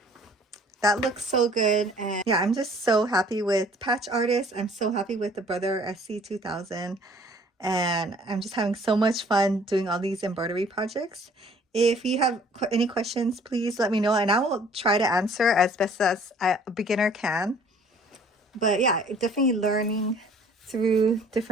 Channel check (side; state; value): both; normal; correlation 0.55